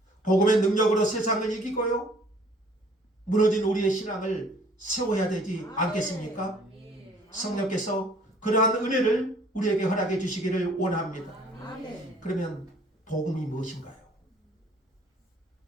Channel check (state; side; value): normal; both; correlation 0.56